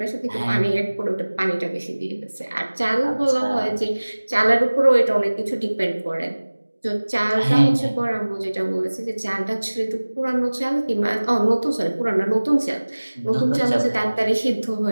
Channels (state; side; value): inverted; both; correlation -1.00